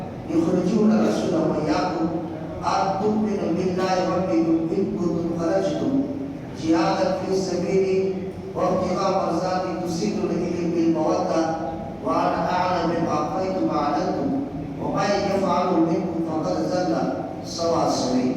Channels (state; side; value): identical; both; correlation 1.00